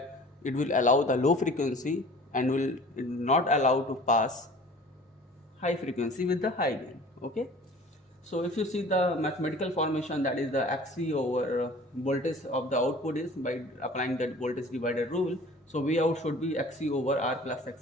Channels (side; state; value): both; normal; correlation 0.45